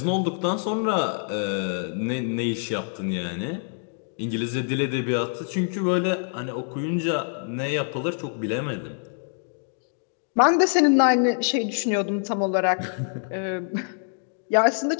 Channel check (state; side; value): silent; right; 61 dB below the other